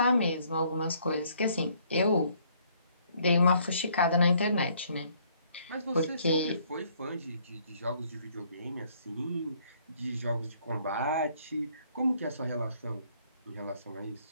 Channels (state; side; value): inverted; both; correlation -0.64